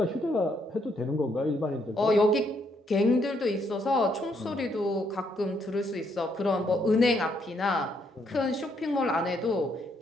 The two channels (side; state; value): both; normal; correlation 0.73